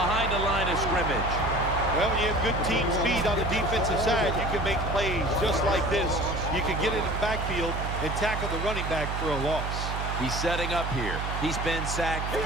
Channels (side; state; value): right; noise; hum, 3 dB below the sound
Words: the line of scrimmage. Well, when you have good team speed on the defensive side, you can make plays just like this. You can get in the backfield and tackle the running back for a loss. He's setting up here. He's been sacked